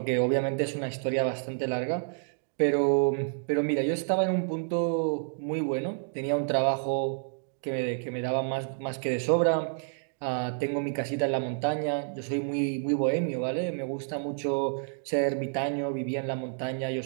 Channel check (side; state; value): left; silent; digital silence